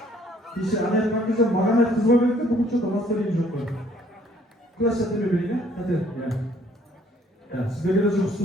İşte ana yapmak güzel, mağana kızma bekle, bugün şurada mastarayım çok var. Kulaş yatır bebeğine, hadi. Сіздерге де жұмысты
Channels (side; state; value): both; normal; correlation 0.61